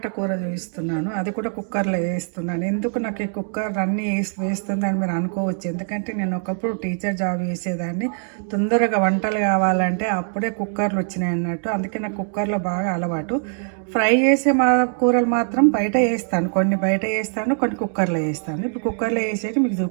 కూర చూపిస్తున్నాను, అది కూడా కుక్కర్లో వేస్తున్నాను. ఎందుకు నాకు ఈ కుక్కర్ అన్నీ వేస్తుందని మీరు అనుకోవచ్చు. ఎందుకంటే నేను ఒకప్పుడు టీచర్ జాబ్ చేసేదాన్ని. తొందరగా వంటలు కావాలంటే అప్పుడే కుక్కర్లు వచ్చినాయి అన్నట్టు. అందుకే నాకు కుక్కర్లో బాగా అలవాటు. ఫ్రై చేసే కూరలు మాత్రం బయట వేస్తాను, కొన్ని బయట వేస్తాను, కొన్ని కుక్కర్లో వేస్తాను. ఇప్పుడు కుక్కర్లో వేసేది మీకు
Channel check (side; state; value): left; silent; 60 dB below the other